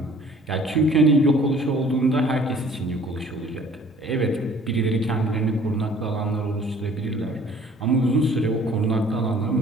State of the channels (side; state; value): both; normal; correlation 0.53